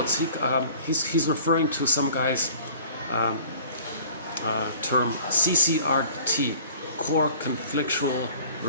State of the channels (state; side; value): inverted; both; correlation -0.48